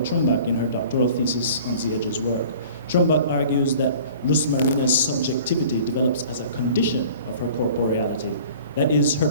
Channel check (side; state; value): both; inverted; correlation -0.46